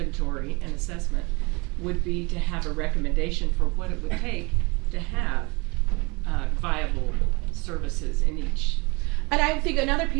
and assessment would be to have a recommendation for what it would take to have viable services in each. And I think another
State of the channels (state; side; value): quieter; left; 27.2 dB